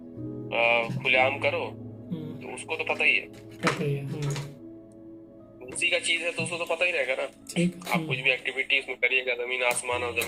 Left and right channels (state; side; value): identical; both; correlation 1.00